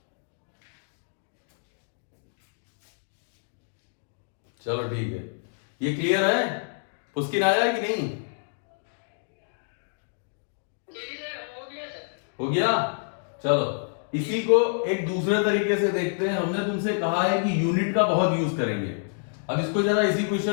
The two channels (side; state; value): right; silent; digital silence